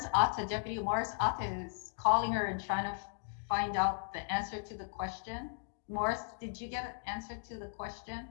Atta, Deputy Morris Atta is calling her and trying to find out the answer to the question. Morris, did you get an answer to the question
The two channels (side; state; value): right; silent; digital silence